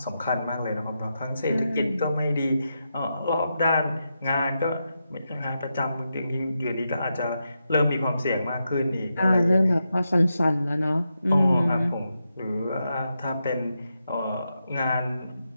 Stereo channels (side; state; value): both; inverted; correlation -0.86